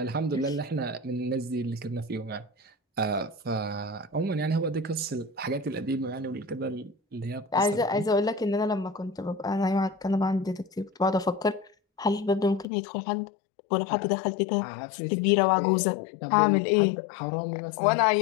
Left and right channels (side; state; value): right; drops out; at 12.7 s